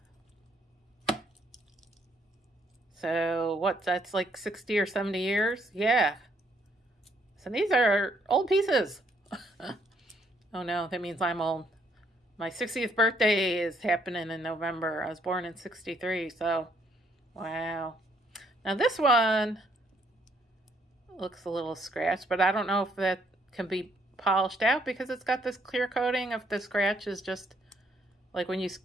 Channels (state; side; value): normal; both; correlation 0.69